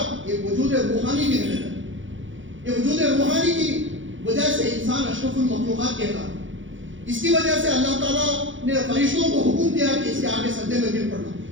ایک وجود روحانی بھی ہے۔ یہ وجود روحانی کی وجہ سے انسان اشرف المخلوقات کہتا ہے۔ اس کی وجہ سے اللہ تعالیٰ نے فرشتوں کو حکم دیا کہ اس کے آگے سجدے میں گر پڑنا۔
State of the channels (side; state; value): left; late; 0.56 ms